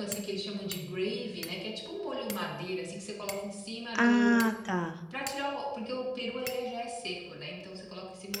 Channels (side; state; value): both; identical; correlation 1.00